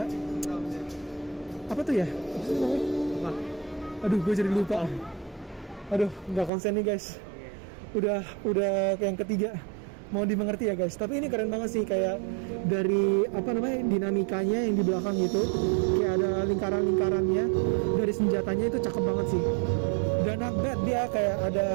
apa tuh ya? Aduh, gue jadi lupa. Aduh, nggak konsen nih guys. Udah yang ketiga. Mau dimengerti ya guys. Tapi ini keren banget sih, kayak dari apa namanya dinamikanya yang di belakang gitu, kayak ada lingkaran-lingkarannya. Dari senjatanya itu cakep banget sih. Dan not bad, dia kayak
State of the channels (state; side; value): drops out; left; at 6.5 s